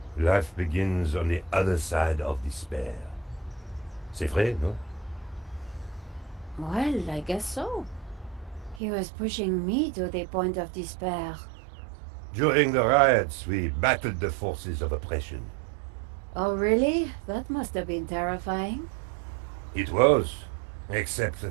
Life begins on the other side of despair. C'est vrai, no? Well, I guess so. He was pushing me to the point of despair. During the riots, we battled the forces of oppression. Oh, really? That must have been terrifying. It was, except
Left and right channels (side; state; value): left; drops out; at 8.8 s